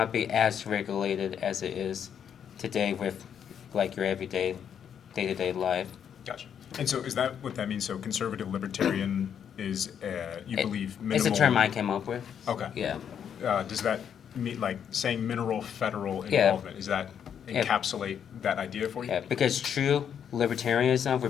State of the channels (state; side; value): quieter; right; 8.3 dB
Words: be as regulated as it is today with like your everyday day-to-day life. Gotcha. And so is that what that means? So conservative libertarian is, you believe minimal? It's a term I came up with. Okay. Yeah. Does that mean, like, saying minimal federal Yeah. involvement, does that encapsulate that idea for you? Yeah, because true libertarianism